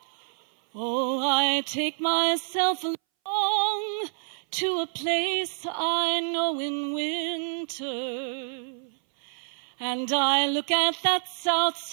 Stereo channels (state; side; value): silent; left; 60 dB below the other